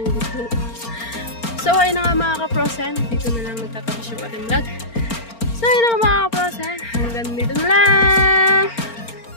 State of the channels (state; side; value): late; right; 4.4 ms